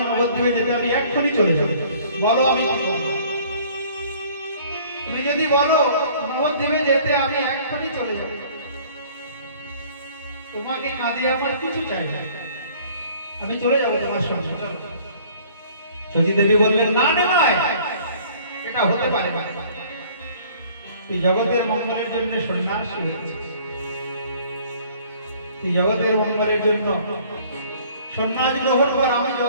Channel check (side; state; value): both; inverted; correlation -0.54